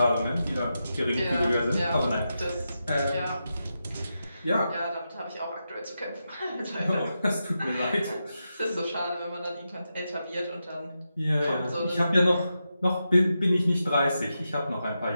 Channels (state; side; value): inverted; both; correlation -0.88